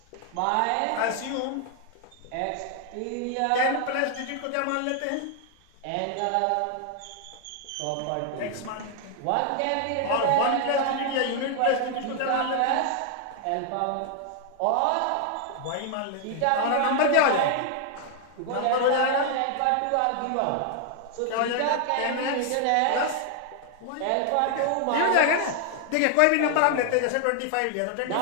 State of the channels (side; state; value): both; different; correlation 0.00